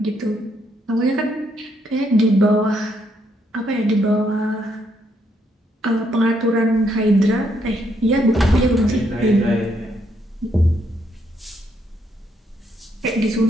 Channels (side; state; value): both; normal; correlation 0.74